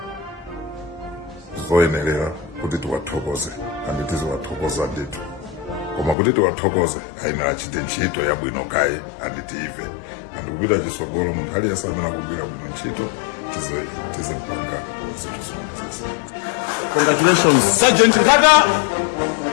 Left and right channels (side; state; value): right; drops out; at 6.2 s